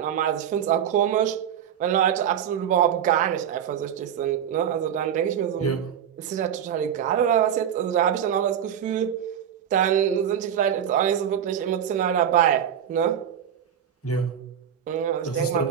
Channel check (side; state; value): left; quieter; 9.1 dB